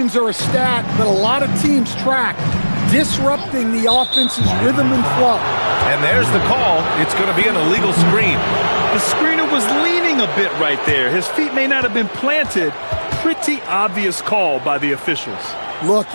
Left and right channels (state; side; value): inverted; both; correlation -1.00